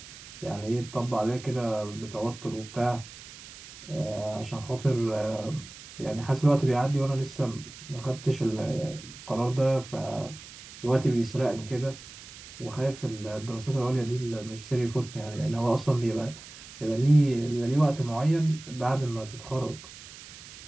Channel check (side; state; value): right; noise; hiss, 16 dB below the sound